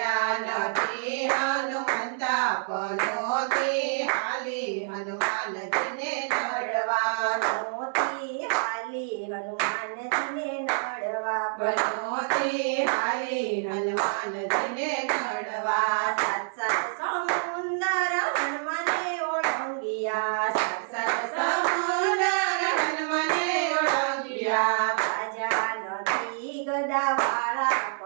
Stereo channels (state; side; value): silent; left; digital silence